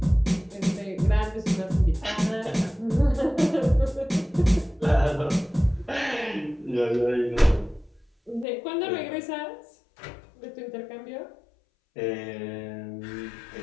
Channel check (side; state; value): right; drops out; at 8.5 s